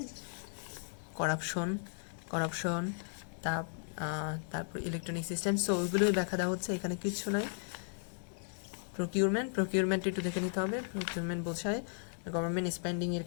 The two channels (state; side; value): silent; right; digital silence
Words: করাপশন তারপর ইলেকট্রনিক সিস্টেম, সো ওইগুলোই ব্যাখ্যা দেওয়া হচ্ছে, এখানে কিছু নাই। প্রকিউরমেন্ট একটু দেখে নিতে হবে। প্রকিউরমেন্ট বোঝায় গভর্নমেন্ট স্পেন্ডিংয়ের